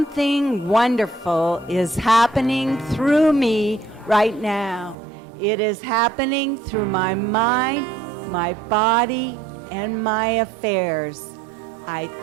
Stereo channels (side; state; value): left; drops out; at 5.0 s